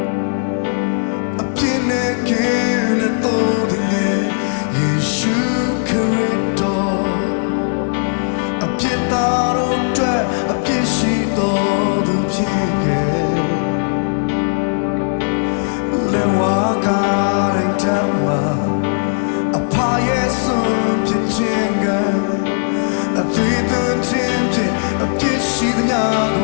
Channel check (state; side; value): silent; right; 68 dB below the other